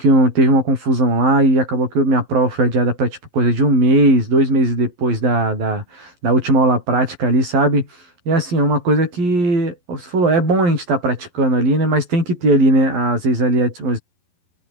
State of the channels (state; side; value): late; left; 11 ms